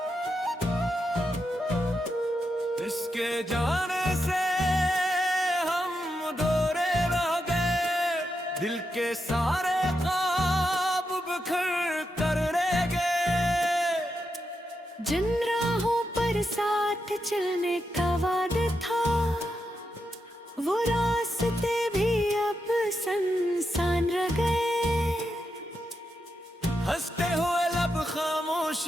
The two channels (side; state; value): both; normal; correlation 0.85